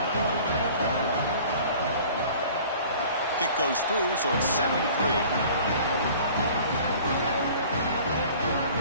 Kick goes through, so it's 7-3.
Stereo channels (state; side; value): inverted; both; correlation -0.47